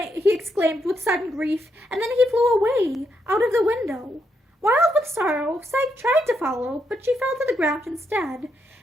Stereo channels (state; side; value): normal; both; correlation 0.79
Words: exclaimed with sudden grief, and then he flew away, out of the window. Wild with sorrow, Psyche tried to follow, but she fell to the ground instead.